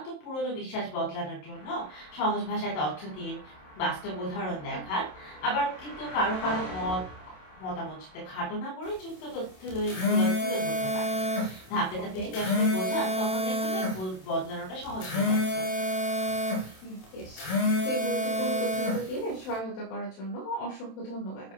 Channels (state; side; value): late; right; 27 ms